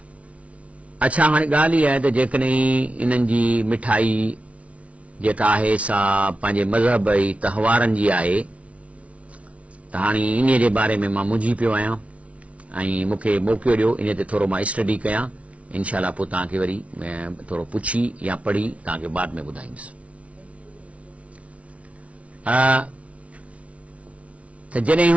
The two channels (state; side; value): late; left; 0.064 ms